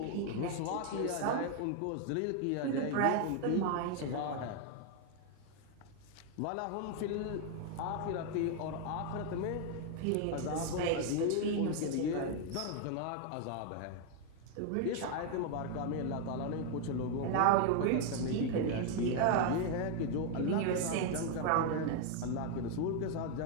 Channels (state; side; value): different; both; correlation 0.00